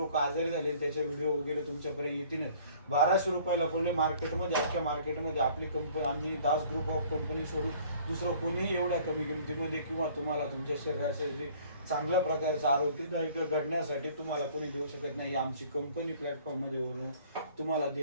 आजारी झाले, त्याचे व्हिडिओ वगैरे तुमच्यापर्यंत येतील. 1200 रुपयाला पडले मार्केटमध्ये. अख्ख्या मार्केटमध्ये आपली कंपनी आम्ही दास ग्रुप ऑफ कंपनी सोडून दुसरं कोणीही एवढ्या कमी किमतीमध्ये किंवा तुम्हाला तुमच्या शरीराचे जे चांगल्या प्रकारचं आरोग्यदायक घडण्यासाठी तुम्हाला कोणी देऊ शकत नाही. आमची कंपनी प्लॅटफॉर्ममध्ये वरून तुम्हाला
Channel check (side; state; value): both; inverted; correlation -0.54